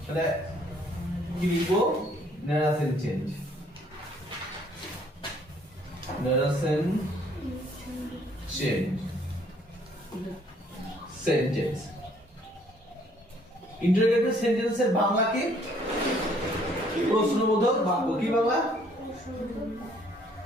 তাহলে কি লিখবো? Narration change, narration change sentence. Interrogative সেন্টেন্সের বাংলা কি? প্রশ্নবোধক বাক্য। কি বাংলা?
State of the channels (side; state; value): both; normal; correlation 0.62